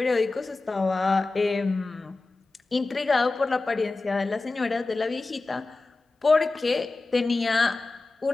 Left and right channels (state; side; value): quieter; right; 3.4 dB